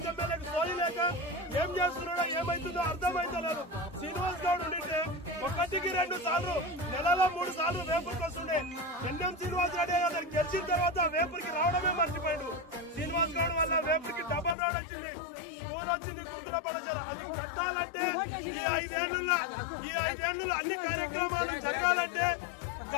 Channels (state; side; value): drops out; right; at 14.6 s